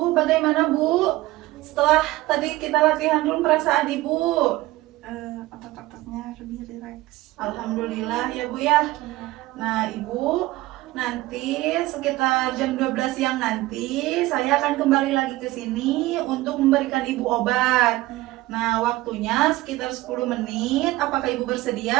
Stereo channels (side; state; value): left; quieter; 18.2 dB